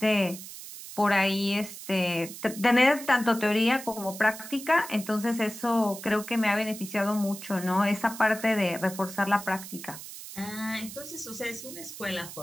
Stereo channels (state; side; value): noise; right; hiss, 12 dB below the sound